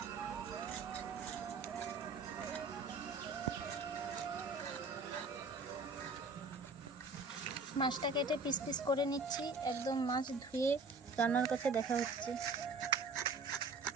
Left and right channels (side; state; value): left; quieter; 3.8 dB